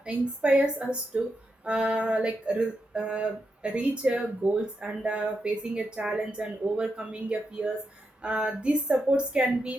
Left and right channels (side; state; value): both; normal; correlation 0.85